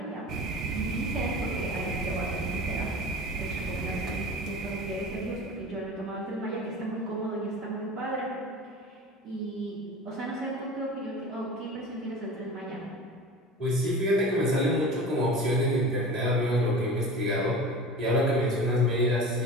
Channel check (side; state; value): both; normal; correlation 0.35